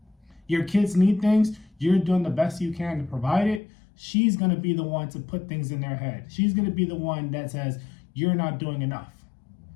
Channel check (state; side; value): drops out; right; at 3.6 s